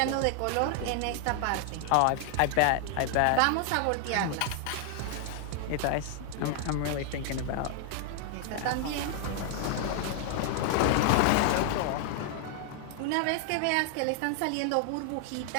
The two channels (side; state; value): both; different; correlation 0.00